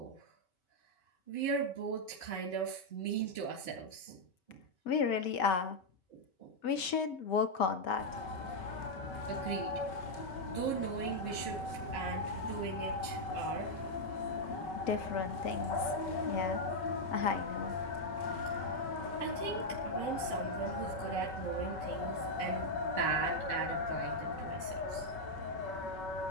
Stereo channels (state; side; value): late; right; 5.7 ms